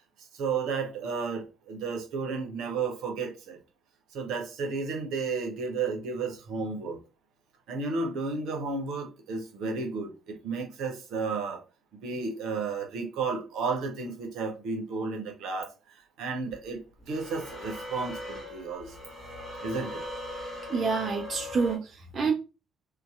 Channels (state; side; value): quieter; left; 4.0 dB